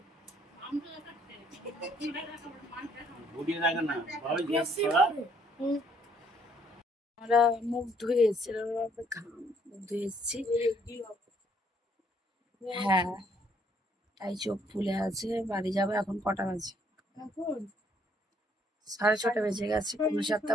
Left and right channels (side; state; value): both; normal; correlation 0.66